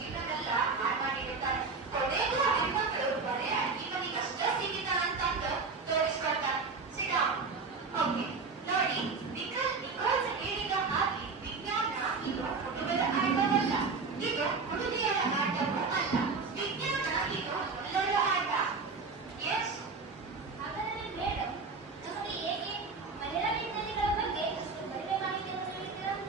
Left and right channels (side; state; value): left; quieter; 4.5 dB